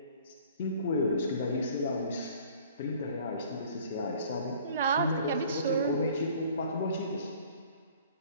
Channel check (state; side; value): inverted; both; correlation -0.52